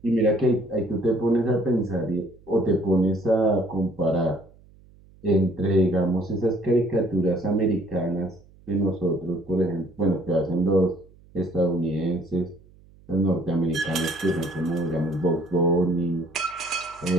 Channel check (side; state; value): right; noise; hum, 26 dB below the sound